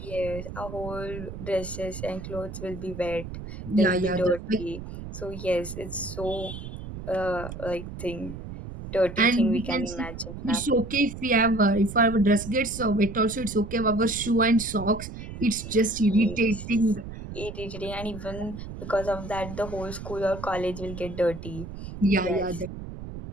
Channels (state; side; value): noise; right; rumble, 10 dB below the sound